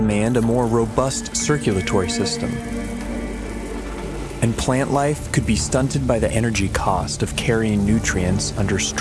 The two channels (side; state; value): both; identical; correlation 1.00